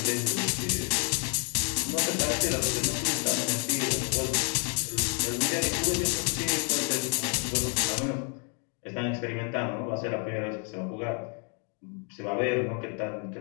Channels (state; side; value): quieter; right; 39.7 dB